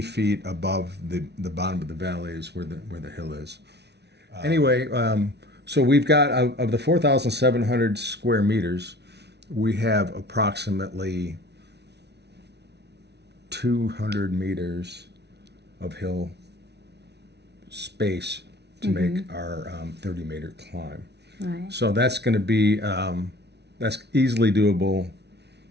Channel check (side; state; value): left; late; 0.49 ms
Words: above the bottom of the valley is where the hill is. Anyway, so we've got, of the 4,700 square meters, we have approximately 200 meters of hill space to make our 30-meter climb. Right. So that's going to be that's easily doable